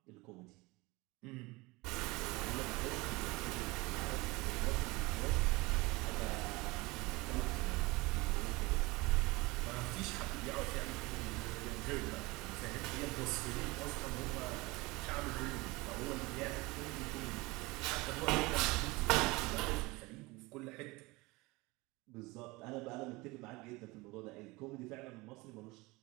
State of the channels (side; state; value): left; quieter; 23.2 dB